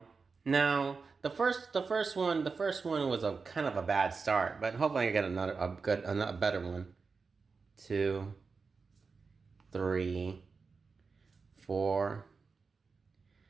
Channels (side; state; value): left; quieter; 4.7 dB